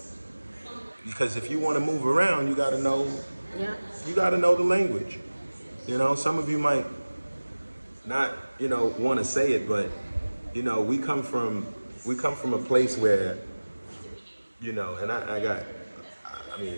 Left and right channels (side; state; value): both; inverted; correlation -1.00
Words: Because if you want to move around, you got to know. Yeah. You got to know the language. Some of you might not, want to say it, but we come from a place where, and I